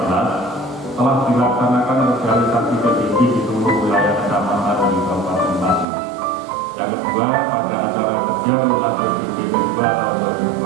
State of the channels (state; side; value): drops out; left; at 5.9 s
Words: telah dilaksanakan sosialisasi PBB di seluruh wilayah kecamatan di Kabupaten Pati. Yang kedua, pada acara kerja lunas PBB 2 tahun